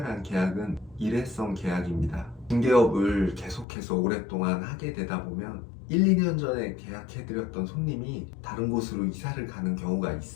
계약은 일회성 계약입니다. 중개업을 계속해서 오랫동안 하게 되다 보면 1, 2년 전에 계약해드렸던 손님이 다른 곳으로 이사를 가는 경우가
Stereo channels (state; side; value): drops out; right; at 3.7 s